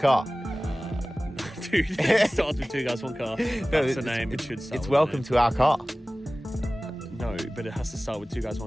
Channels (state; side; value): normal; both; correlation 0.97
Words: Dude, it starts with Two Guys, One Car. That's the name. It should start It's with welcome the to our car. name. No, but it has to start with Two Guys,